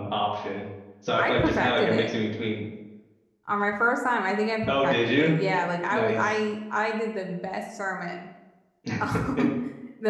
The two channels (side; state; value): both; identical; correlation 1.00